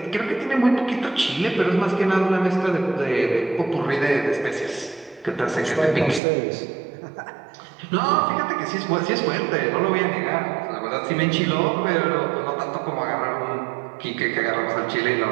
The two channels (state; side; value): drops out; left; at 6.2 s